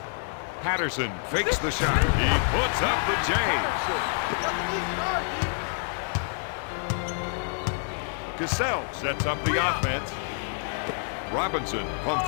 Patterson fakes the shot. He puts up the J. Cassell sets up the offense. Robinson pump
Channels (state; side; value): silent; right; 60 dB below the other